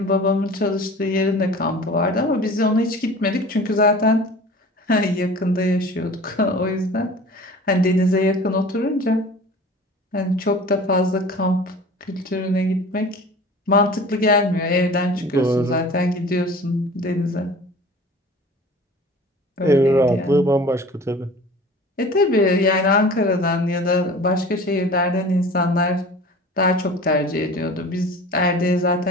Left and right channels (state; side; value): normal; both; correlation 0.41